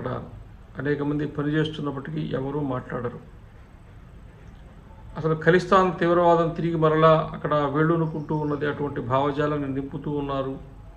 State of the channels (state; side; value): identical; both; correlation 1.00